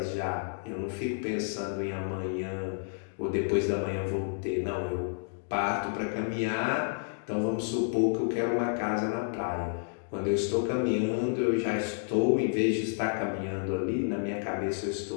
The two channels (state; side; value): silent; right; digital silence